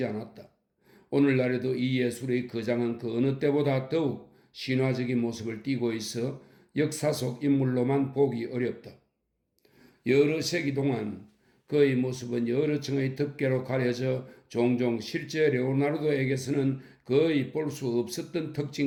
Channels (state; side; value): identical; both; correlation 1.00